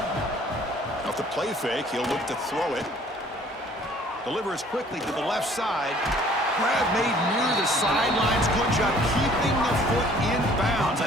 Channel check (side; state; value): both; normal; correlation 0.56